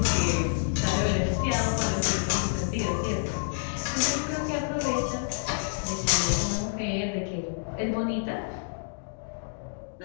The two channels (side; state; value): right; silent; digital silence